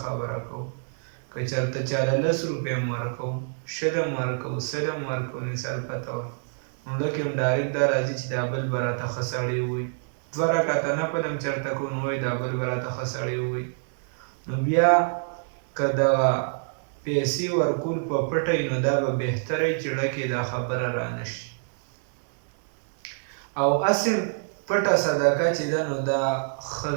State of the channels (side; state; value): left; silent; digital silence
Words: خبره کوو. که چېرته چاله 10 روپۍ هم ورکوو، 20 هم ورکوو، 100 هم ورکوو، مثال پته وه، نو لکه هم ډایرکټ دا راځي چې دا بل به راته ښه سړی ووایي. 2 رکعته نفل هم چېرته کوو، نو وایي دا بل به راته ښه سړی ووایي. نو بیا که دغه پیسې ورکول په پټه وي، نو دا به بهتره وي چې ړکې دا خبره رانه شي. او اصل پټه صدقه چې ده، نو دا ښه